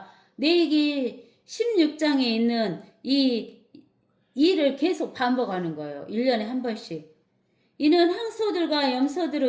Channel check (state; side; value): identical; both; correlation 1.00